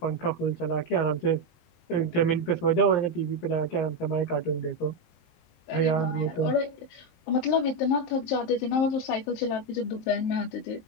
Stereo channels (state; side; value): late; right; 23 ms